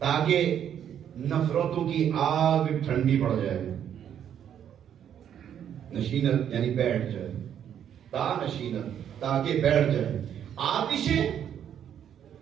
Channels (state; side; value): quieter; left; 9.4 dB